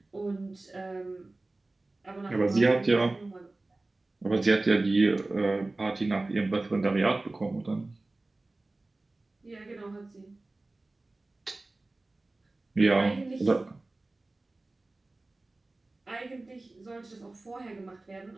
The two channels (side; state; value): left; quieter; 3.0 dB